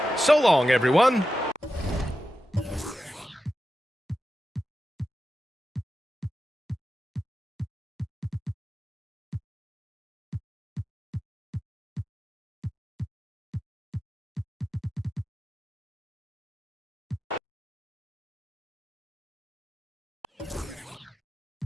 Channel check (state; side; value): normal; both; correlation 0.91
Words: So long, everyone.